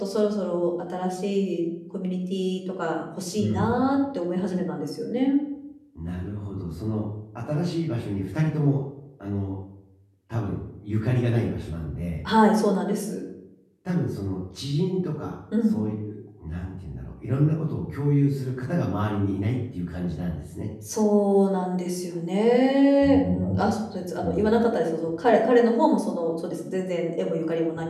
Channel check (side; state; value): both; identical; correlation 1.00